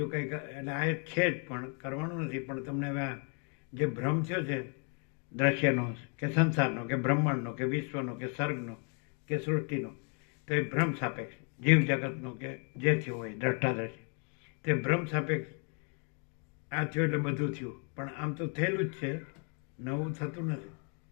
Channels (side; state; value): right; quieter; 38.7 dB